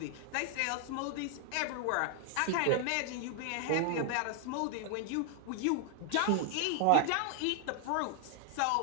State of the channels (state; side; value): different; both; correlation 0.00